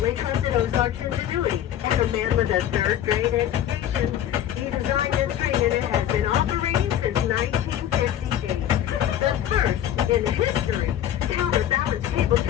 trusted Ozark's ingenuity, and a man with a 3rd grade education, he designed this train and it has been operating since 1958. The first in history counterbalance cable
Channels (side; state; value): right; quieter; 11.1 dB